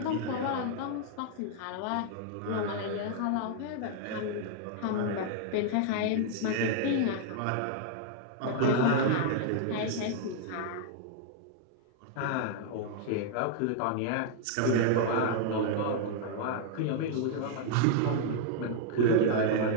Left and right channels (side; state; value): both; different; correlation 0.00